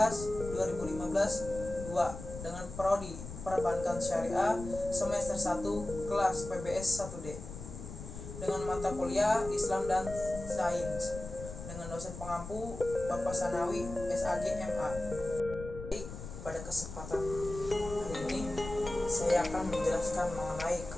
2 dengan prodi Perbankan Syariah semester 1 kelas PBS 1D dengan mata kuliah Islam dan Sains dengan dosen pengampu Bapak Sanawi SAG MA. Pada kesempatan hari ini saya akan menjelaskan mengenai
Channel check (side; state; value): left; noise; rumble, 10 dB below the sound